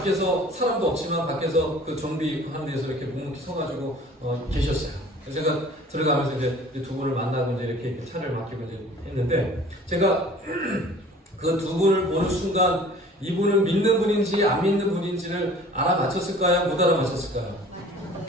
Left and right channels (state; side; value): normal; both; correlation 0.48